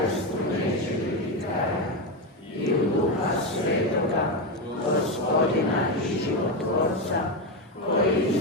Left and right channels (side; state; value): both; normal; correlation 0.11